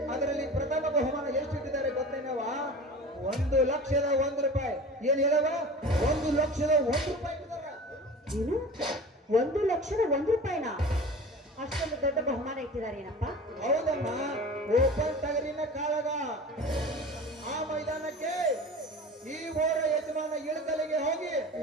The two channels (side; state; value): both; normal; correlation 0.37